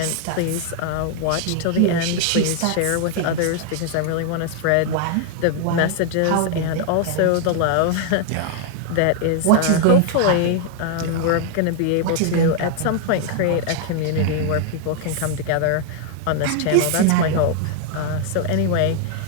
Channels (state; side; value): different; both; correlation 0.00